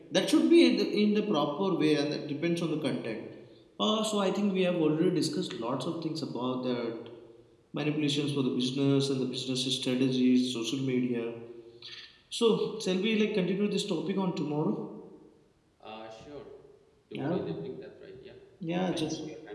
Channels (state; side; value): identical; both; correlation 1.00